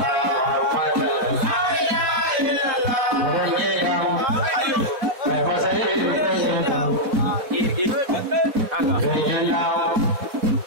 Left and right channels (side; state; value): left; late; 4.1 ms